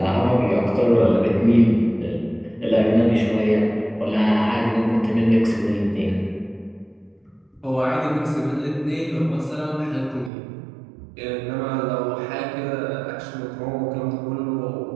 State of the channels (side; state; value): left; drops out; at 10.3 s